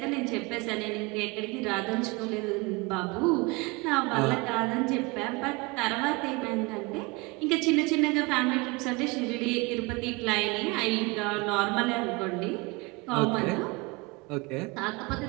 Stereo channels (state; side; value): quieter; left; 25.9 dB